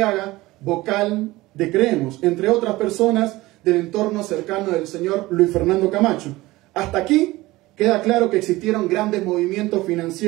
vocal de Creemos, entre otras personas del entorno cercano del señor Luis Fernando Camacho. Hasta aquí queda claro que existieron grandes movimientos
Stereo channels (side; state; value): left; quieter; 19.1 dB